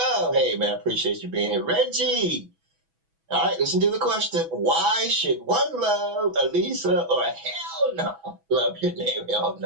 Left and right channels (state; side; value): late; left; 6.1 ms